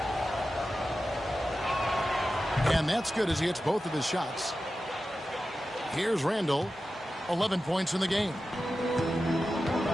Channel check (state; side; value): normal; both; correlation 0.93